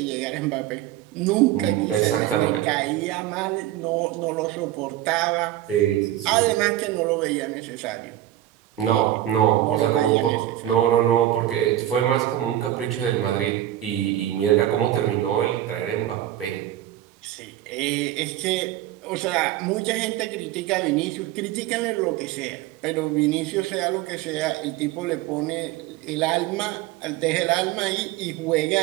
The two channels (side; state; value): left; quieter; 13.3 dB